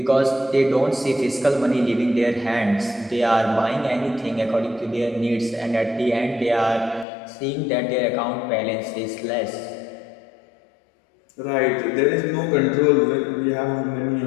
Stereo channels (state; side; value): drops out; right; at 7.1 s